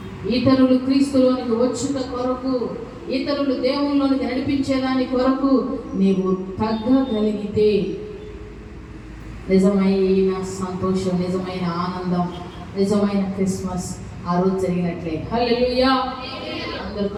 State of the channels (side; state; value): both; identical; correlation 1.00